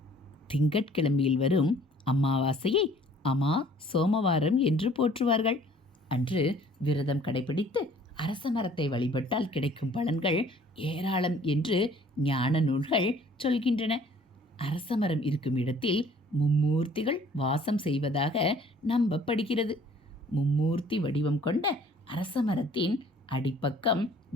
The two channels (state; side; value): normal; both; correlation 0.55